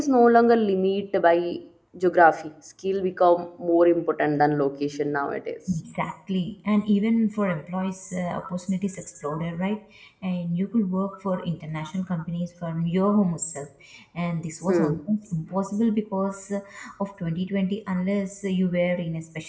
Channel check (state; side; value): identical; both; correlation 1.00